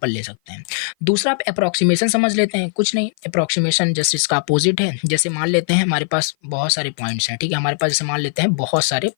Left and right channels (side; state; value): right; silent; 56 dB below the other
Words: ले सकते हैं। दूसरा आप अप्रोक्सीमेशन समझ लेते हैं, कुछ नहीं, अप्रोक्सीमेशन जस्ट इसका अपोजिट है। जैसे मान लेते हैं हमारे पास बहुत सारे पॉइंट्स हैं, ठीक है, हमारे पास जैसे मान लेते हैं बहुत सारे